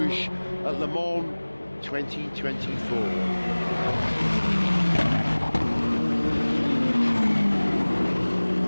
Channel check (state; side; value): inverted; both; correlation -1.00